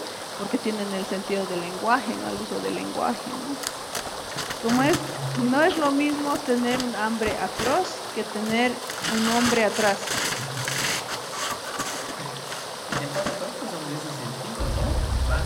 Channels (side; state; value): both; identical; correlation 1.00